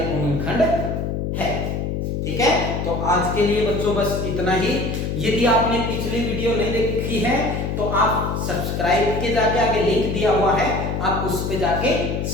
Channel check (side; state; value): left; noise; hum, 2 dB below the sound